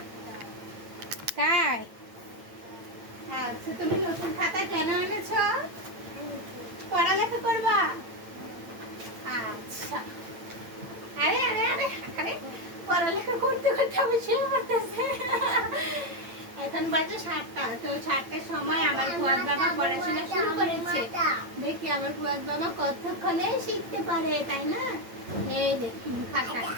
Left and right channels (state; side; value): late; left; 8.9 ms